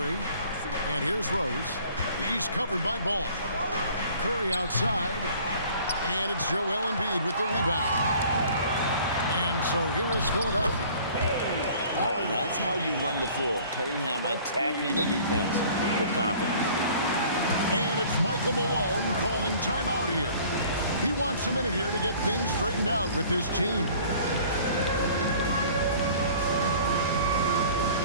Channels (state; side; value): inverted; both; correlation -0.51